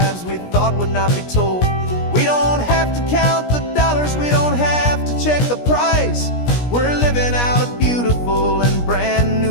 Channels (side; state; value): right; late; 17 ms